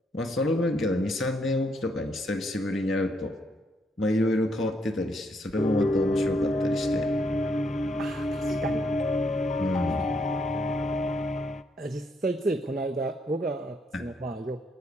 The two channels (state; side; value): normal; both; correlation 0.74